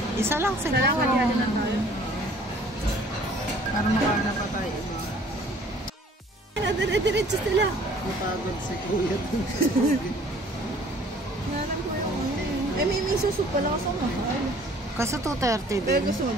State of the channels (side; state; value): both; normal; correlation 0.54